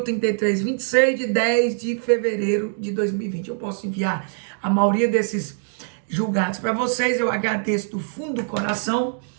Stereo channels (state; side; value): silent; left; 63 dB below the other